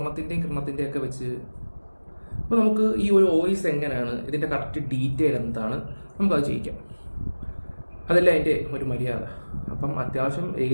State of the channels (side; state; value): both; inverted; correlation -1.00